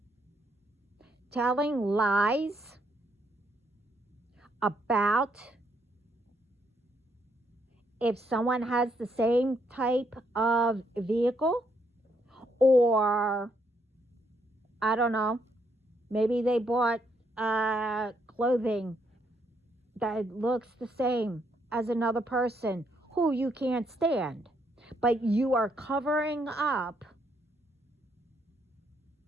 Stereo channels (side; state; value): both; normal; correlation 0.74